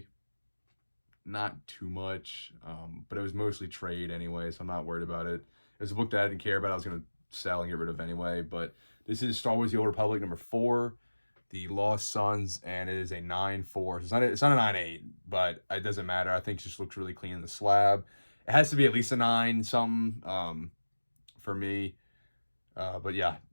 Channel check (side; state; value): both; inverted; correlation -1.00